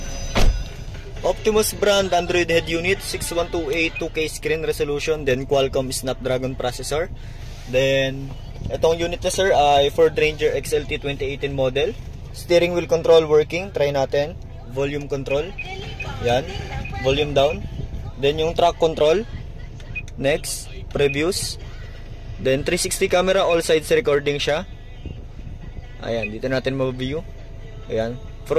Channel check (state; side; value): identical; both; correlation 1.00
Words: Optimus brand Android head unit 6128, 2K screen resolution, then Qualcomm Snapdragon processor. Then itong unit na sir ay Ford Ranger XLT 2018 model. Steering wheel control working, try natin. Volume control. Yan, volume down. Then yung track control. Next, previews. Then 360 camera, all sides recording siya. Ayan, dito natin ma-view. Ayan,